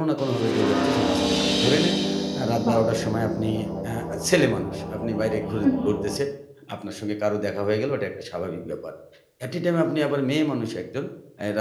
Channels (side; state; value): both; identical; correlation 1.00